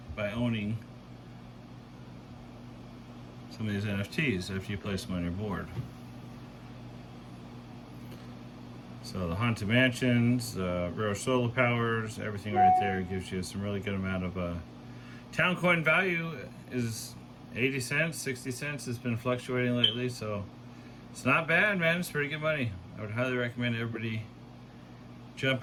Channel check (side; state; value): both; identical; correlation 1.00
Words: by owning some of these NFTs after you place them on your board. So the Haunted Mansions, Rare Solar Powers, everything right there gives you some really good amount of towncoin value. Is 80 cents, 60 cents. It's been fluctuating lately, so it's not bad, man. It's pretty good money. I would highly recommend everybody